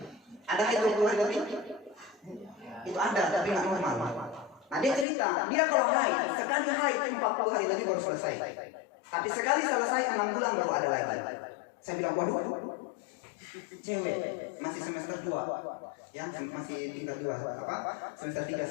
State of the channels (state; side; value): drops out; right; at 5.1 s